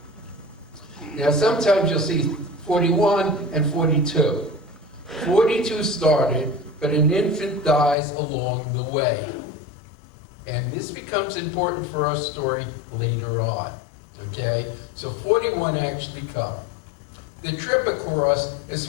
Now sometimes you'll see 41 and 42. 42 started, but an infant dies along the way. And this becomes important for our story later on, okay? So 41 actually come. The trip across is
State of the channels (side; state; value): right; drops out; at 8.0 s